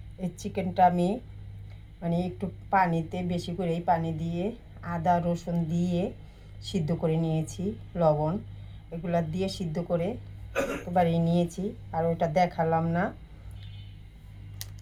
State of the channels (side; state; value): both; identical; correlation 1.00